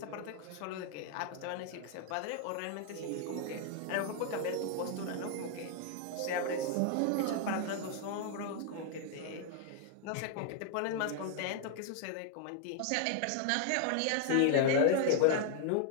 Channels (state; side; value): different; both; correlation 0.00